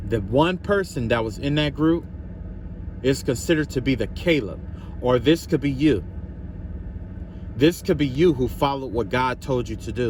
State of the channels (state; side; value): identical; both; correlation 1.00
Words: The one person that was in that group is considered to be the Caleb, or this could be you. This could be you who followed what God told you to